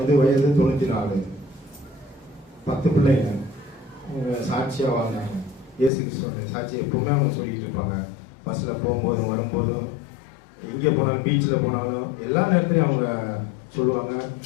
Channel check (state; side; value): drops out; right; at 5.9 s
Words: வயது 94, 10 பிள்ளைங்க. அவங்க சாட்சியாக வாழ்ந்தாங்க. இயேசு கிறிஸ்துவோட சாட்சி எப்பவுமே அவங்க சொல்லிட்டு இருப்பாங்க. பஸ்ஸில் போகும்போதும் வரும்போதும், எங்கே போனாலும், பீச்சில் போனாலும் எல்லா நேரத்துலையும் அவங்க சொல்லுவாங்க.